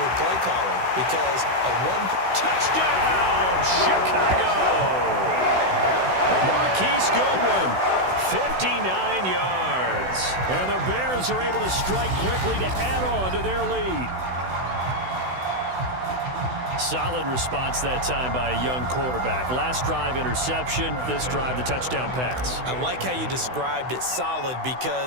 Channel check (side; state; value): left; late; 16 ms